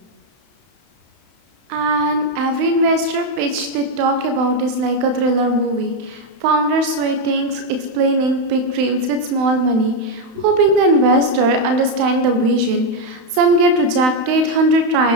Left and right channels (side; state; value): left; late; 31 ms